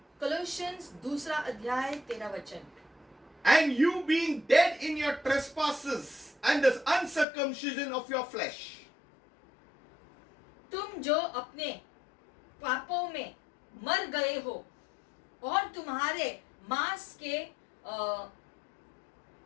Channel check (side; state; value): right; drops out; at 7.2 s